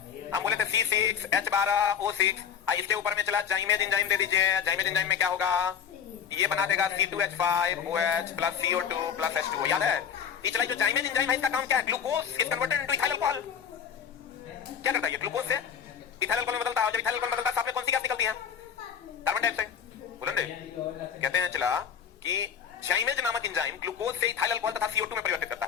हम बोले थे C6H12O6. इसके ऊपर में चला जाइमेज एंजाइम दे दीजिए. जाइमेज एंजाइम में क्या होगा? ये बना देगा C2H5OH plus CO2 plus H2O. याद है? ये चला जो जाइमेज एंजाइम है, इसका काम क्या है? Glucose is converted into ethyl alcohol. क्या करता है ये? ग्लूकोज से इथाइल अल्कोहल में बदलता है. जब इथाइल अल्कोहल में बदलता है, साथ में कौन सी गैस निकलती है? Carbon dioxide. बोलो ना. कहते हैं चला कि जाइमेज नामक एंजाइम ग्लूकोज से इथाइल अल्कोहल तथा CO2 में परिवर्तित करता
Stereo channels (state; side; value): quieter; right; 7.9 dB